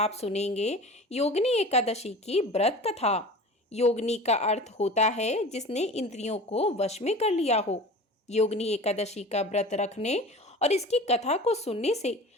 सुनेंगे योगिनी एकादशी की व्रत कथा। योगिनी का अर्थ होता है जिसने इंद्रियों को वश में कर लिया हो। योगिनी एकादशी का व्रत रखने और इसकी कथा को सुनने से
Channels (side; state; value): both; normal; correlation 0.37